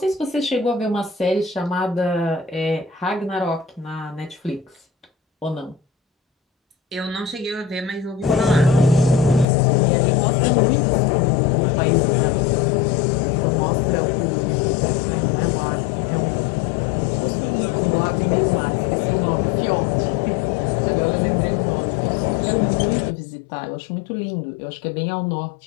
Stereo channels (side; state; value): right; drops out; at 9.5 s